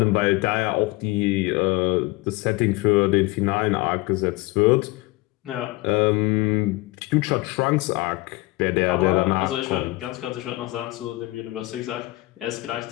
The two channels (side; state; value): right; quieter; 21.1 dB